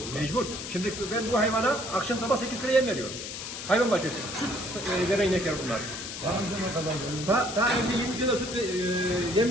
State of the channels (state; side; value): noise; left; hiss, 8 dB below the sound